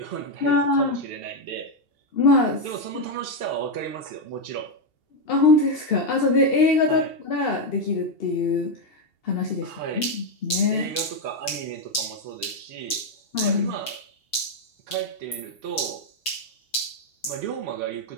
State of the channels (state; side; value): late; right; 2.7 ms